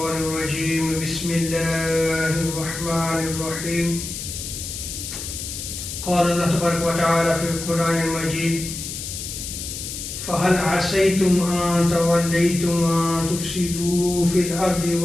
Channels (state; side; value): noise; left; hiss, 7 dB below the sound